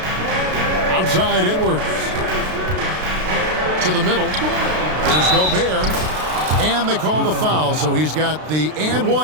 Outside Edwards. To the middle. There's Gobert. And they call the foul, so he's got the and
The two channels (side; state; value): left; late; 33 ms